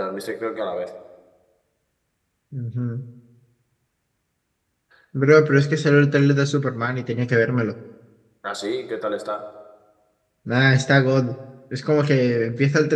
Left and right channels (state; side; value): identical; both; correlation 1.00